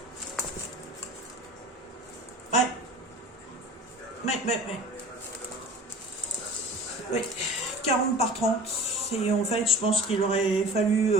Oui, 40 par 30. Et en fait, je pense qu'il aurait fallu...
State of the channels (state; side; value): normal; both; correlation 0.40